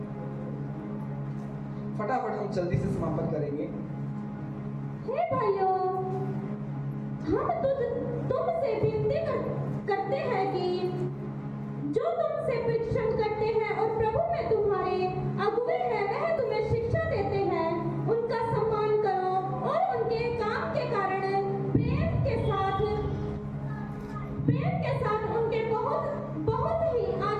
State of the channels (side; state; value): both; identical; correlation 1.00